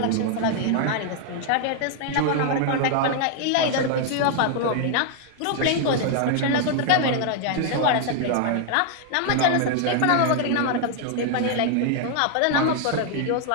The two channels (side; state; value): both; different; correlation 0.00